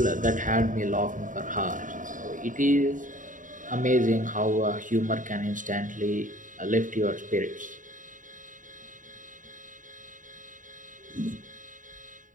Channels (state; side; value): late; left; 0.38 ms